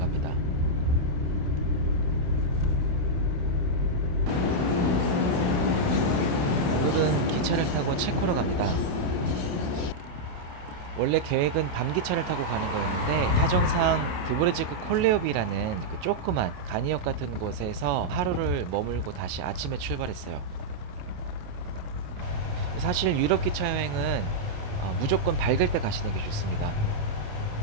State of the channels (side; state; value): left; late; 28 ms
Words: 오늘은 기차를 타고 체코로 갑니다. 원래 계획은 밤기차를 타고 가는 거였는데 사정상 드브레지크 콜레오비라는 그 조그만 간이역 같은 곳에서 하루를 머물고 다시 아침에 출발했어요. 사실 유럽 기차 여행은 무조건 밝을 때 가시는 게 좋습니다.